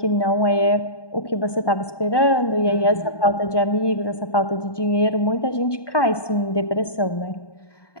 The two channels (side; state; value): right; late; 1.2 ms